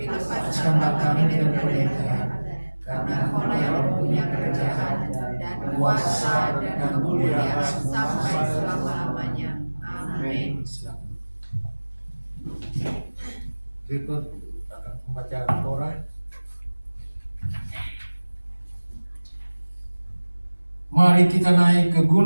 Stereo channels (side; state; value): both; inverted; correlation -1.00